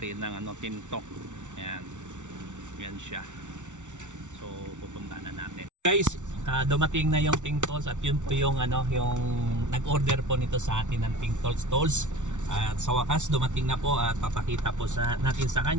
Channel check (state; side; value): late; left; 0.85 ms